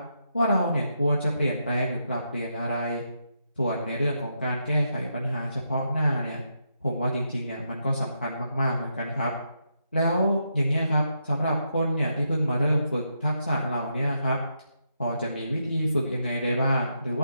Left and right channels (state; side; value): inverted; both; correlation -0.82